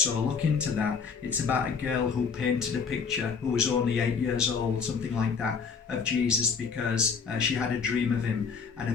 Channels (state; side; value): quieter; right; 5.8 dB